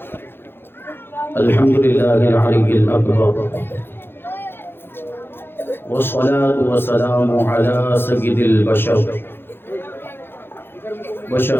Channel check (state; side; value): late; right; 0.10 ms